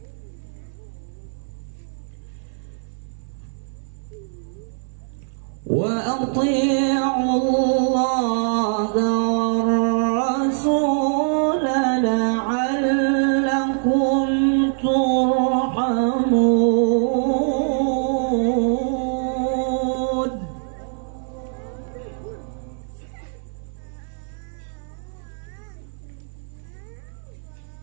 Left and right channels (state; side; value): silent; left; 58 dB below the other